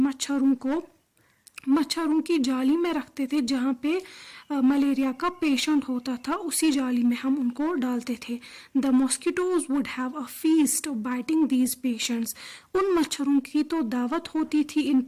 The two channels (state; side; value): identical; both; correlation 1.00